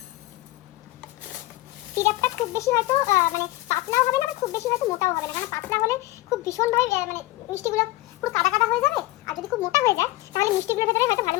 সিরাপটা খুব বেশি হয়তো মানে পাতলাও হবে না, খুব বেশি হয়তো মোটাও হবে না, কারণ পাতলা হলে খুব ভীষণভাবে মানে মিষ্টিগুলো পুরো কাদা কাদা হয়ে যাবে। আর যদি খুব মোটা হয়ে যায় তাহলে মিষ্টিগুলোর ভেতরে হয়তো ভালো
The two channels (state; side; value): quieter; right; 18.4 dB